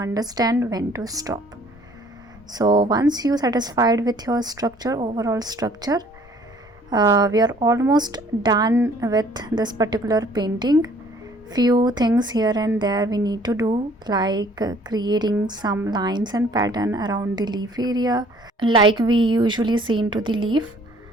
when to stop. So once you satisfied with your structure, overall structure, we are almost done with this particular painting. Few things here and there we need to do, like creating some lines and pattern around the leaf area like we usually see into the leaf.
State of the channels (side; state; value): both; normal; correlation 0.57